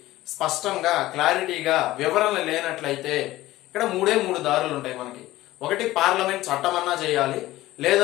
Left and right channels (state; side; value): quieter; right; 16.6 dB